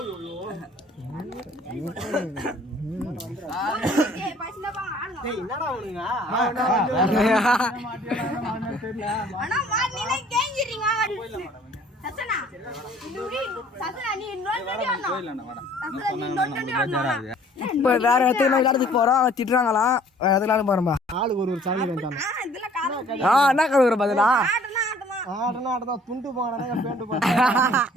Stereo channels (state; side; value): normal; both; correlation 0.55